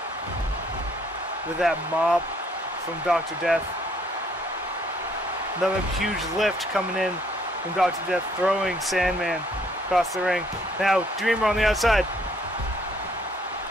that mop from Dr. Death. Another huge lift coming in from Dr. Death, throwing Sandman across the ring. Now Dreamer on the outside.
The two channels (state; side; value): normal; both; correlation 0.65